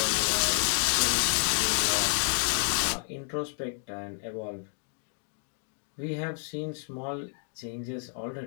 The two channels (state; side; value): silent; right; 58 dB below the other